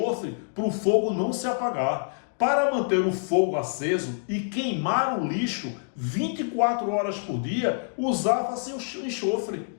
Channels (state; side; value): silent; right; digital silence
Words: para o fogo não se apagar. Para manter o fogo aceso e queimar o lixo 24 horas por dia, usava-se o